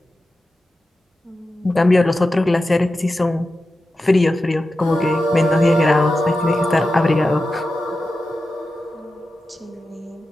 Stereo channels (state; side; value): normal; both; correlation 0.92